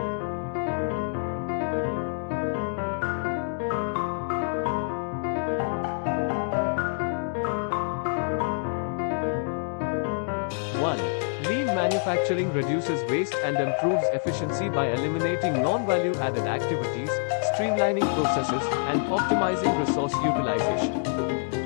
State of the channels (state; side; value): silent; right; digital silence